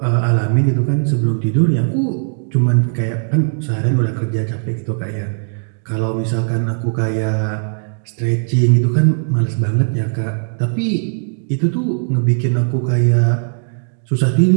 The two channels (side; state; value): left; silent; digital silence